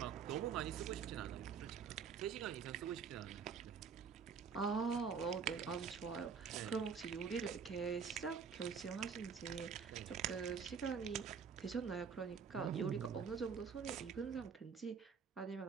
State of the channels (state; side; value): quieter; left; 6.2 dB